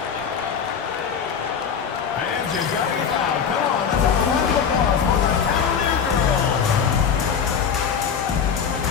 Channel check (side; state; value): right; quieter; 7.1 dB